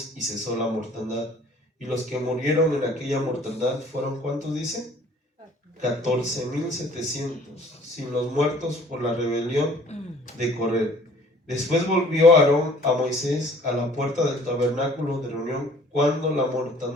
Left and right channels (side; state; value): both; normal; correlation 0.53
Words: y cesó la mortandad. Y los que murieron en aquella mortandad fueron, ¿cuántos dice? 14,700, sin los muertos por la rebelión de Coré. Después volvió Aarón a Moisés a la puerta del tabernáculo de reunión cuando la